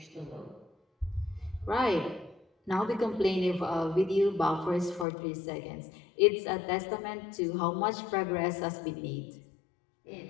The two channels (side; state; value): right; drops out; at 5.1 s